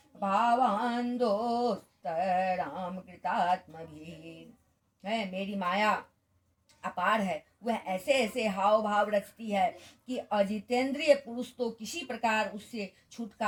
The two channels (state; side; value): identical; both; correlation 1.00